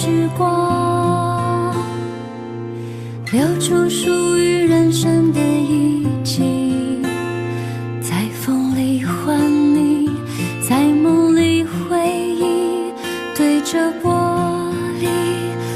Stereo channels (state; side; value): identical; both; correlation 1.00